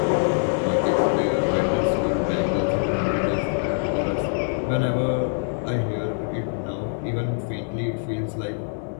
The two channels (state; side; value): silent; right; 63 dB below the other